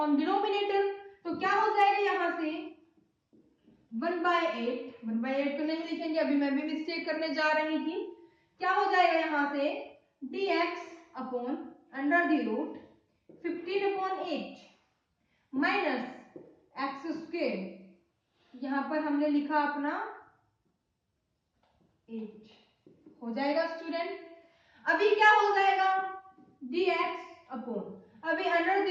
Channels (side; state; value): both; identical; correlation 1.00